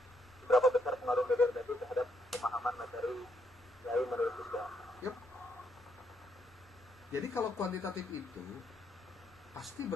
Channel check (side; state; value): both; normal; correlation 0.74